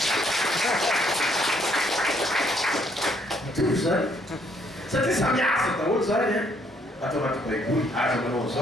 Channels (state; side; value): normal; both; correlation 0.68